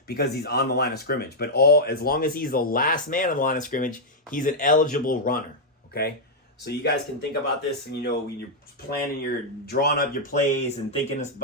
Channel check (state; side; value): normal; both; correlation -0.05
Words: because he's on the line of scrimmage. But as long as he's the last man on the line of scrimmage, he's an eligible runner, okay? So you guys can think about this, and when you're planning, you're drawing up your plays and thinking